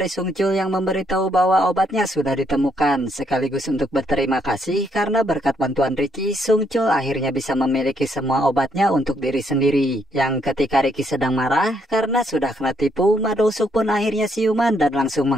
Sung Chul yang memberitahu bahwa obatnya sudah ditemukan. Sekaligus untuk berterima kasih karena berkat bantuan Ricky, Sung Chul akhirnya bisa memiliki semua obatnya untuk diri sendiri. Yang ketika Ricky sedang marah karena sudah kena tipu, Ma Dong-suk pun akhirnya siuman dan langsung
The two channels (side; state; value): both; normal; correlation 0.73